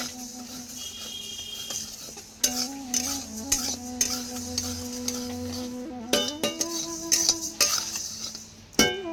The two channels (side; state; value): both; identical; correlation 1.00